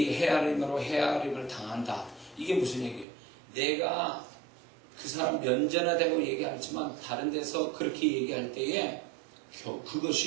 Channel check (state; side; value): drops out; left; at 3.1 s